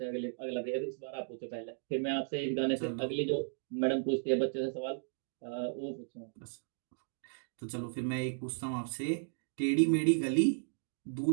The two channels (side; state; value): left; silent; digital silence